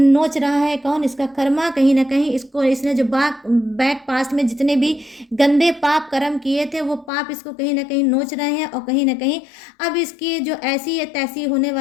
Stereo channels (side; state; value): right; drops out; at 7.1 s